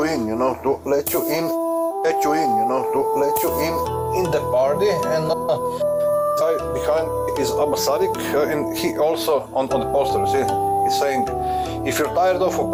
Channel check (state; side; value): identical; both; correlation 1.00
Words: in, you know, to let you in, in the party. And behind is Abba Sadiq, and he also on the poster, see, he's saying, if you're tired of